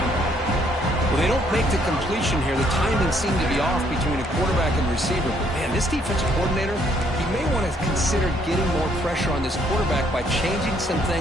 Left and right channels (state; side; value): normal; both; correlation 0.67